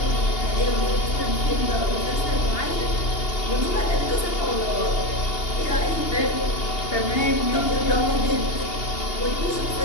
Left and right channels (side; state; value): right; late; 2.8 ms